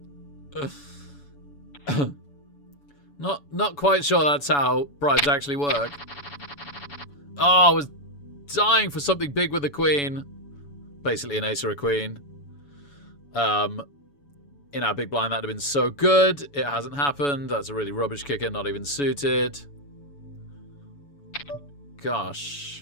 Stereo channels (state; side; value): late; right; 7.0 ms